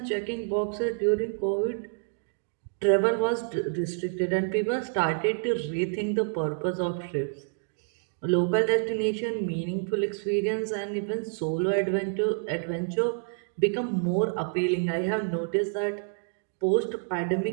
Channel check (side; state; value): left; silent; 59 dB below the other